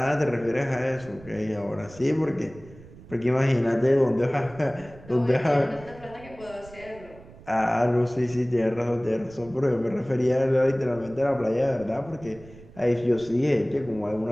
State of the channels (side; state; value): right; noise; rumble, 20 dB below the sound